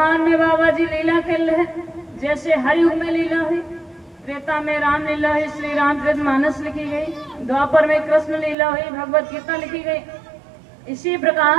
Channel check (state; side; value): drops out; left; at 8.6 s